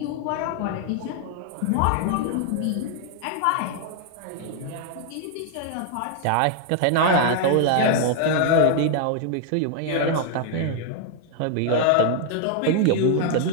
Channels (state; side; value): different; both; correlation 0.00